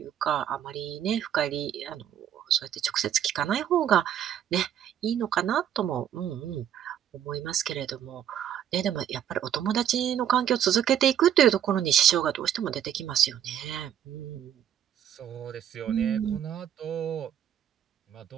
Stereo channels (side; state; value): left; quieter; 9.9 dB